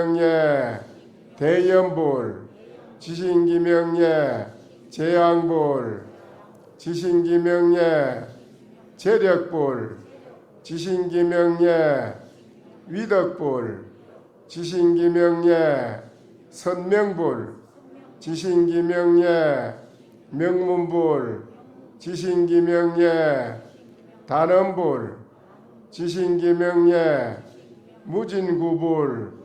대연불 지신기명예 재앙불 지신기명예 재력불 지신기명예 위덕불 지신기명예 선명불 지신기명예 명문불 지신기명예 단언불 지신기명예 무진구불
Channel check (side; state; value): both; identical; correlation 1.00